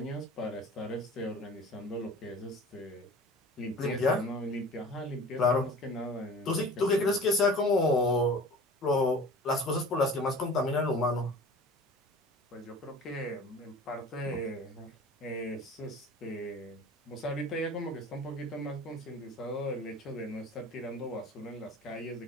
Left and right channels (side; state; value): both; normal; correlation 0.41